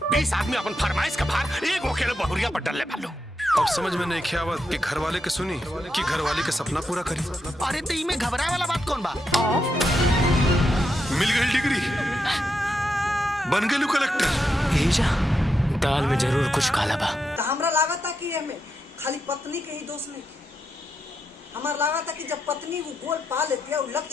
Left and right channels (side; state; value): both; normal; correlation 0.84